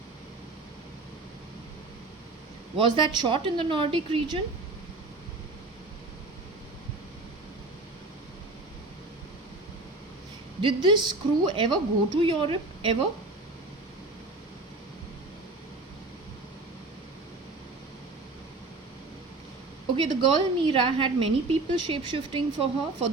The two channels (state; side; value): quieter; left; 3.2 dB